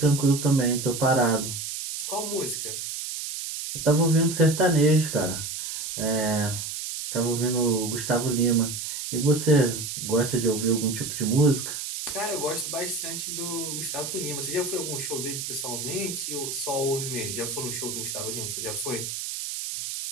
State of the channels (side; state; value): right; noise; hiss, 5 dB below the sound